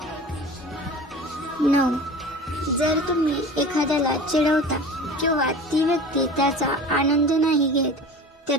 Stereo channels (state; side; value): normal; both; correlation 0.37